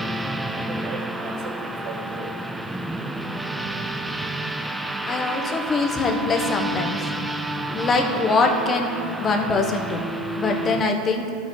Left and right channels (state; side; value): noise; right; hiss, 30 dB below the sound